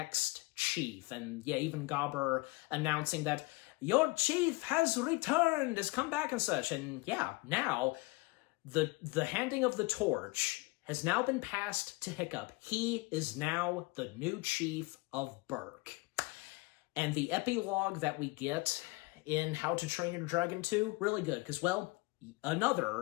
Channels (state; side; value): quieter; right; 24.9 dB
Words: chief. And yeah, even Gobber announcing that your chief has returned, has come back and such. And yeah, now the handing of the torch has now been passed to Hiccup. He is now the new chief of Berk. And the epilogue that we get in How to Train Your Dragon 2, really good, because, well,